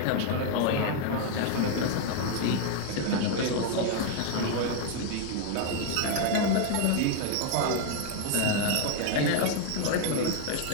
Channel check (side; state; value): both; different; correlation 0.00